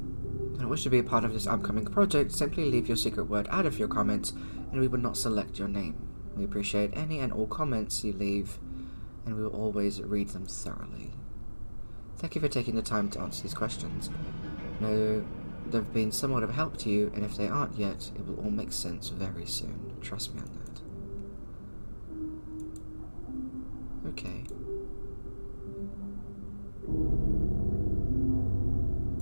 Wish to be a part of this upcoming project, simply leave your secret word out of your comments and we will not select your name. We appreciate any and all comments you leave and we will always read them thoroughly. Thank you for taking the time to answer these questions. Know they've been somewhat of a help to you, and if they aren't yet, it will all make sense very soon. Trust me on that. Okay.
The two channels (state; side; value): inverted; both; correlation -1.00